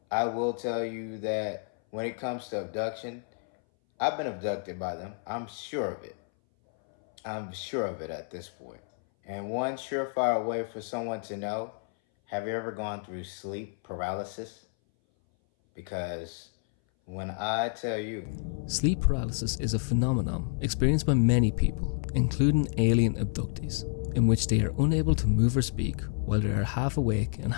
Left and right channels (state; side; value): silent; right; 58 dB below the other